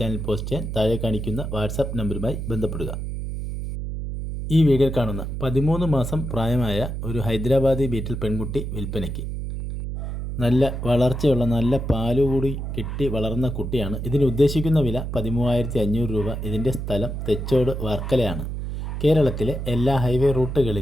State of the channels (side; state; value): right; noise; hum, 5 dB below the sound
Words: പോസ്റ്റ് ചെയ്യാൻ താഴെ കാണിക്കുന്ന വാട്സാപ്പ് നമ്പറുമായി ബന്ധപ്പെടുക. ഈ വീഡിയോയിൽ കാണുന്ന 13 മാസം പ്രായമായ ഒരു ഹൈദരാബാദി ബീറ്റിൽ പെൺകുട്ടി വിൽപ്പനയ്ക്ക്. നല്ല വളർച്ചയുള്ള നല്ല പാലുകൂടി കിട്ടി വളർന്ന കുട്ടിയാണ്. ഇതിന് ഉദ്ദേശിക്കുന്ന വില 13,500 രൂപ. ഇതിൻ്റെ സ്ഥലം തെച്ചോട് വർക്കലയാണ്. കേരളത്തിലെ എല്ലാ ഹൈവേ